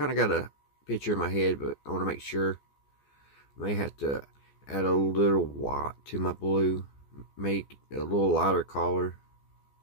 of got a picture in my head, but I want to make sure. I may have to add a little white to my blue, make a little lighter color,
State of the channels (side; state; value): right; late; 14 ms